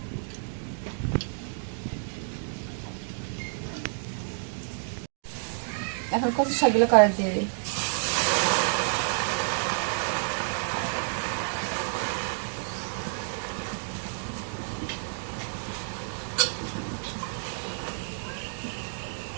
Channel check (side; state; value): left; silent; digital silence